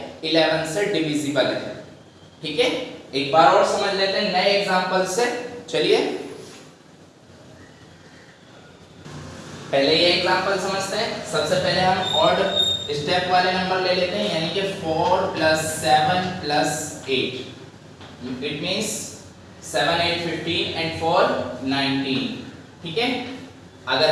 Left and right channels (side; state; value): both; identical; correlation 1.00